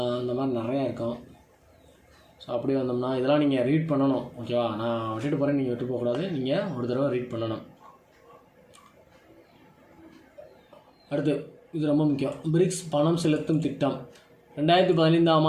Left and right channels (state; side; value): identical; both; correlation 1.00